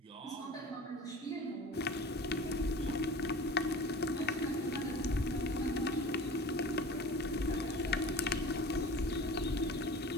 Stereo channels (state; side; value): normal; both; correlation 0.39